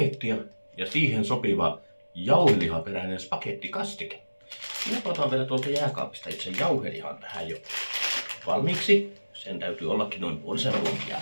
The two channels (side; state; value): both; inverted; correlation -1.00